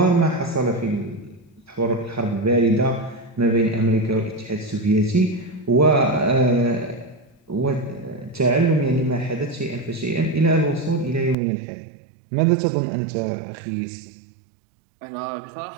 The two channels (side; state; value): left; drops out; at 11.4 s